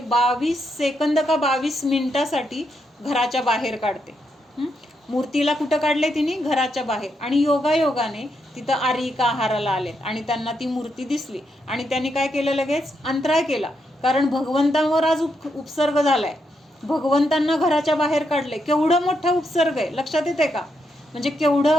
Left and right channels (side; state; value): both; normal; correlation 0.81